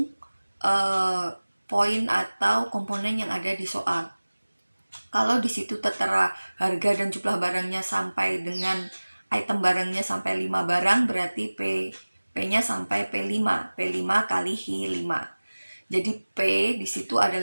poin atau komponen yang ada di soal. Kalau di situ tertera harga dan jumlah barangnya sampai dengan item barangnya sampai 5 barang, berarti P-nya sampai P5 kali Hi5. Jadi P di situ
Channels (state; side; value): inverted; both; correlation -1.00